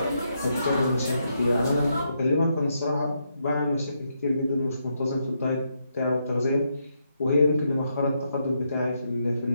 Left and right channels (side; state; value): both; inverted; correlation -0.80